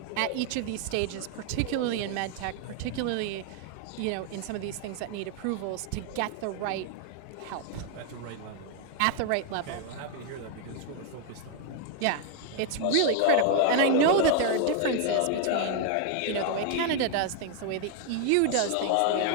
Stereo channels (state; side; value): different; both; correlation 0.00